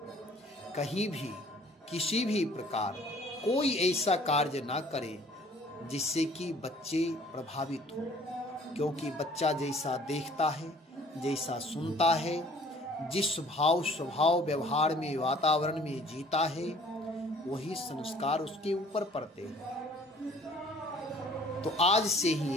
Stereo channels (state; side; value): normal; both; correlation 0.54